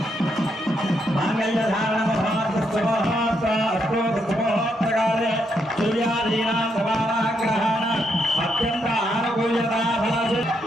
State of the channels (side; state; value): both; normal; correlation 0.78